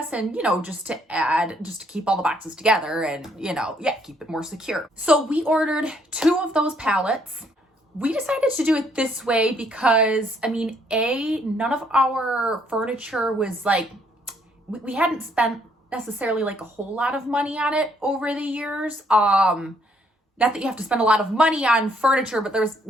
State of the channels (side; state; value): both; normal; correlation 0.68